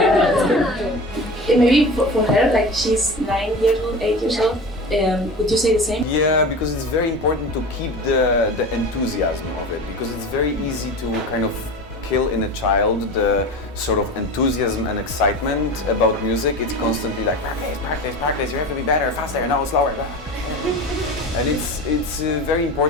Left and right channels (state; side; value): normal; both; correlation 0.31